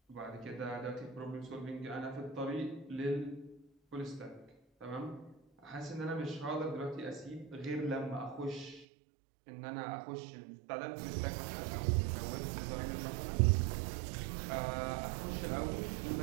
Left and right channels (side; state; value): left; drops out; at 8.8 s